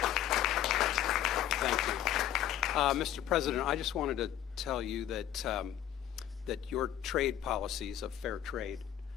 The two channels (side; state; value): right; quieter; 11.3 dB